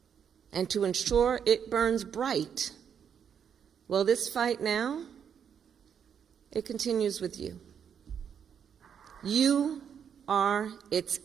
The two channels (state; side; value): quieter; left; 7.8 dB